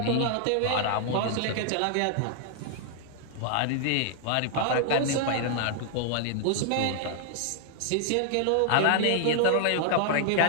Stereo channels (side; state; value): both; different; correlation -0.01